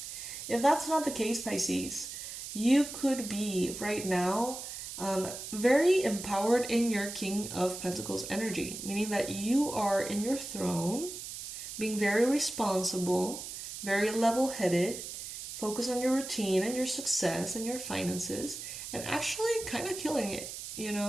If that's not the case, Pisces, you could be right now very empowered in your King of Pentacles energy, meaning that you are in your throne, being very responsible, very level-headed, focus on your routine and your success and your finances, and actually kind of killing it, you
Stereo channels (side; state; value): right; noise; hiss, 9 dB below the sound